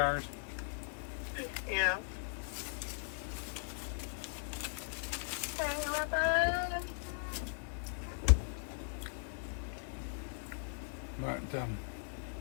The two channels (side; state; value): right; silent; digital silence